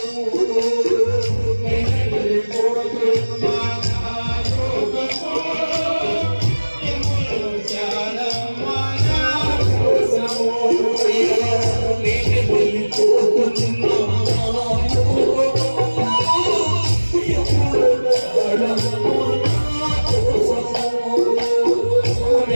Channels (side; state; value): both; inverted; correlation -1.00